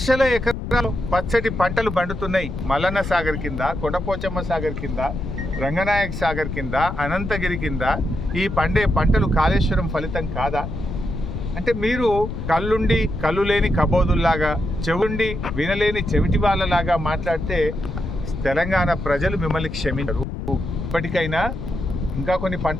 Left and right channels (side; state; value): left; noise; rumble, 6 dB below the sound